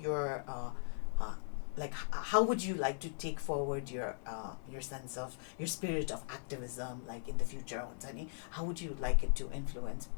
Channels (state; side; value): silent; right; digital silence